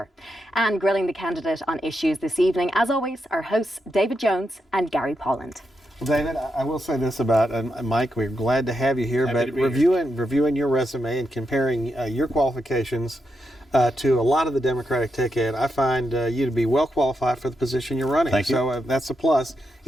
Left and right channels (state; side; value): normal; both; correlation 0.84